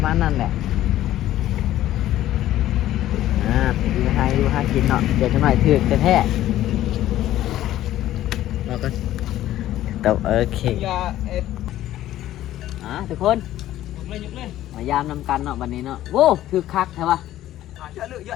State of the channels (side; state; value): right; quieter; 13.6 dB